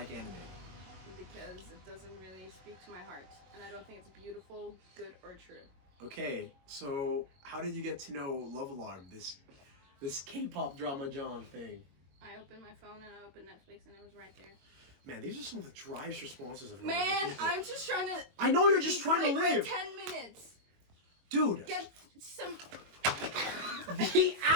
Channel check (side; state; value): left; late; 22 ms